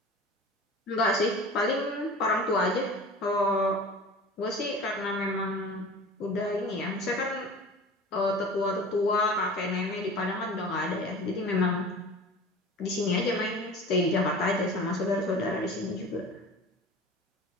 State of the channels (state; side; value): normal; both; correlation 0.38